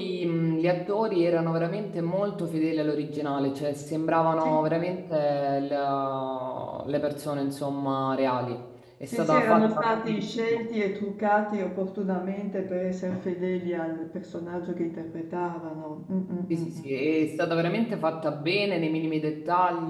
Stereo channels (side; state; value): both; identical; correlation 1.00